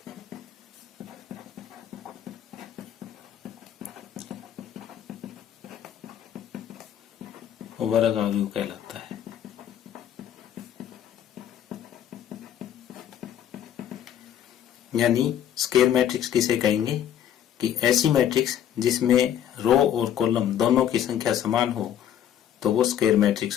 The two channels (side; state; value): right; quieter; 10.2 dB